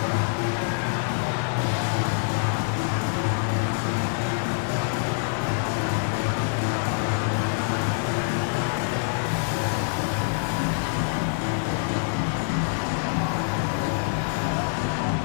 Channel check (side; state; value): right; silent; digital silence